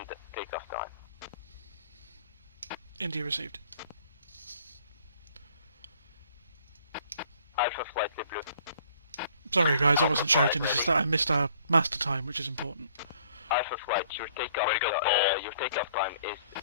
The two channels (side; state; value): both; inverted; correlation -0.59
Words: takeoff time. India received. Alpha Flight LeBlanc. Sorry guys, I wasn't shouting, it's just that I missed our master time, which is important. Alpha Flight, your takeoff time is